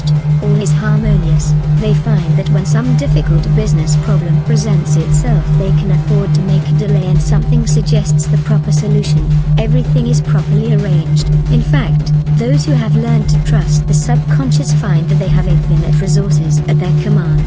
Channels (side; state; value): both; identical; correlation 1.00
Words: all is harmonious. They find that when some difficult business problem presents itself, they can afford to make a delay and something suggests the proper solution. Everything is properly arranged. In fact, those who have learned to trust the subconscious find that they have infinite resources at their